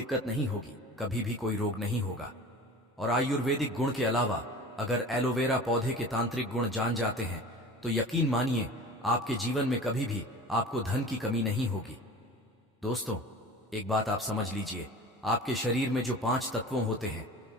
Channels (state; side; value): normal; both; correlation 0.38